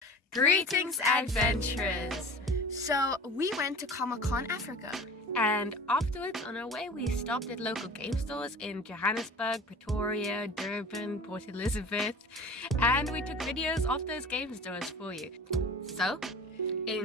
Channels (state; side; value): normal; both; correlation 0.39